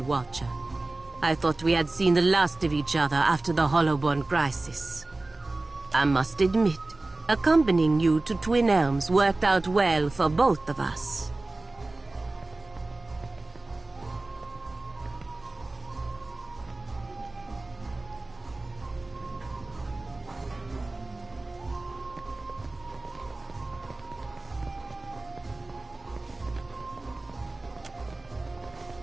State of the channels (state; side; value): quieter; left; 3.0 dB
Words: Watcher. I thought we had seen the last of each other after the Hollowborn crisis. I must admit, accompanying you to Twin Elms worked out well for both of us.